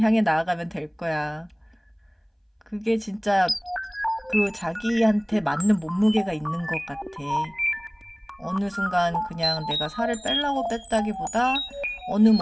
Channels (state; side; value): identical; both; correlation 1.00